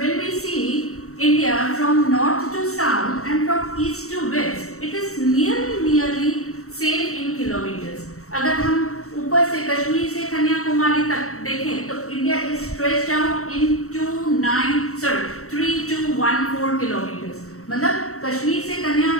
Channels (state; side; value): late; right; 0.64 ms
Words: we see India from north to south and from east to west, it is nearly same in kilometers. अगर हम ऊपर से कश्मीर से कन्याकुमारी तक देखें तो India is stretched out into 3214 kilometers. मतलब कश्मीर से